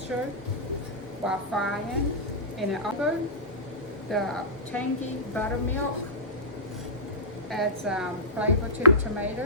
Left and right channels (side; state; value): both; normal; correlation -0.17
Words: while frying. And it also, the tangy buttermilk adds flavor to the